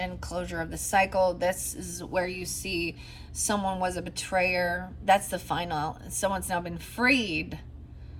closure of the cycle. This is where you see someone was a betrayer. That's the final. Someone's now been freed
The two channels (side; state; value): both; identical; correlation 1.00